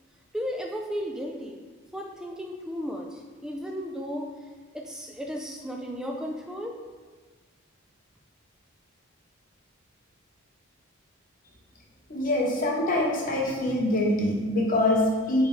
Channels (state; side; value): normal; both; correlation 0.40